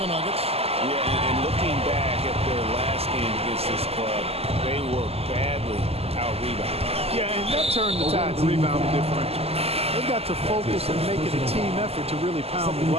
Nuggets. Yeah, and looking back at their last game against this club, they were badly out-rebounded. Yeah, and that turned the tide to rebounding differential. They've got to focus and make it a team effort to really pound the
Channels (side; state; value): left; late; 0.29 ms